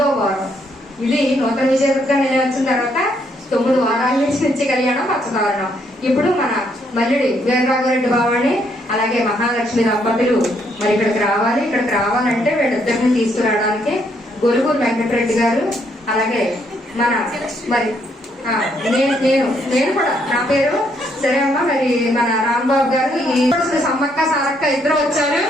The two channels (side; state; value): both; normal; correlation 0.72